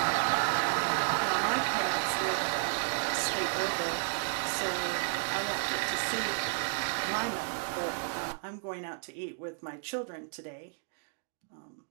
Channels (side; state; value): left; silent; digital silence